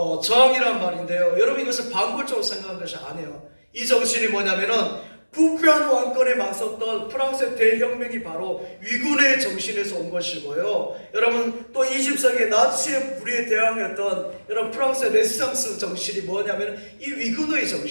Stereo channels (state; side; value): inverted; both; correlation -1.00